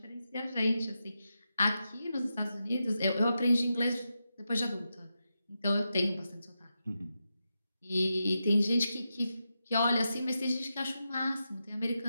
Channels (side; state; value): both; inverted; correlation -0.88